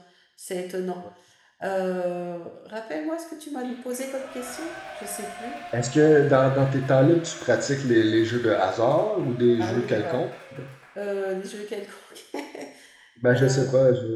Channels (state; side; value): identical; both; correlation 1.00